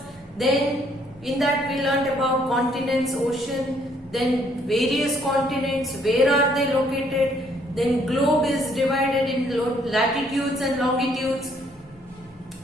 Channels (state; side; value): normal; both; correlation 0.66